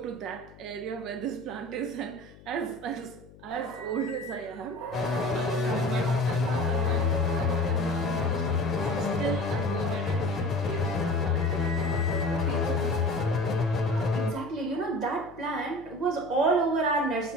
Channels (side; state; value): left; noise; hum, 22 dB below the sound